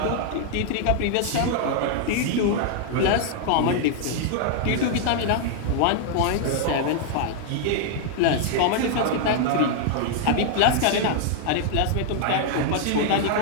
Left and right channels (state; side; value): different; both; correlation 0.00